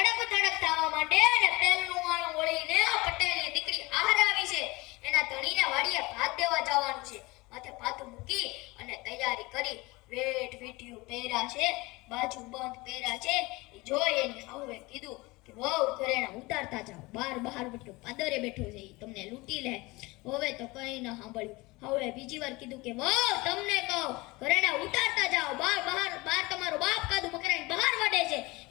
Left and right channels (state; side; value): quieter; right; 22.9 dB